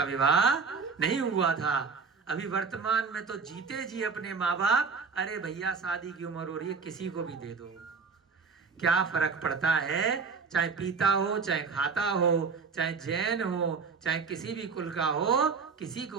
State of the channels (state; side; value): quieter; left; 5.1 dB